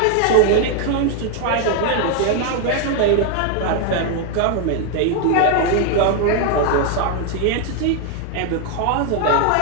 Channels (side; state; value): both; different; correlation 0.01